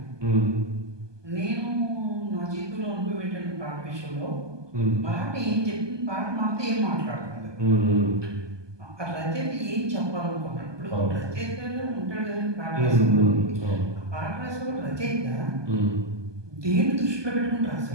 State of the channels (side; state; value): left; late; 1.2 ms